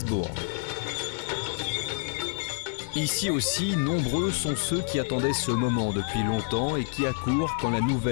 Ici aussi, nombreux sont ceux qui attendaient ce moment depuis longtemps et qui accourent quand la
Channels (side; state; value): right; silent; 60 dB below the other